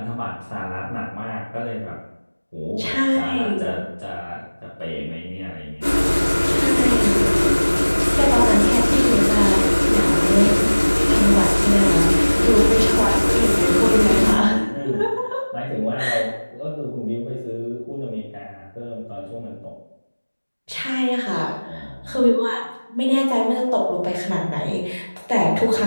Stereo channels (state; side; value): inverted; both; correlation -1.00